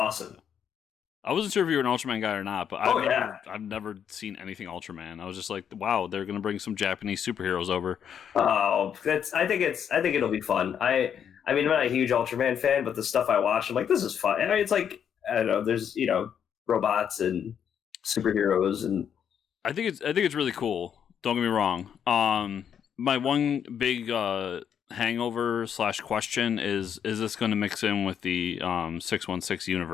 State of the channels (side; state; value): right; quieter; 8.3 dB